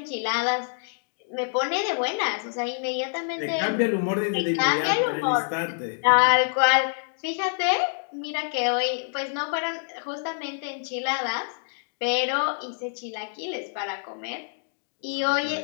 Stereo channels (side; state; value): right; silent; digital silence